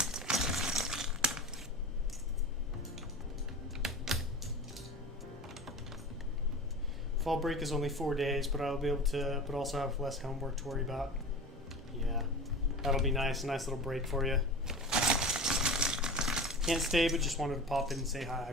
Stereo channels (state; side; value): normal; both; correlation 0.34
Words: Fall break is only 4 days, but I'll be able to, but also have less homework to worry about. Yeah, that'll be nice. A nice little break for you. Can't stay, but just wanted to pop in and say hi. I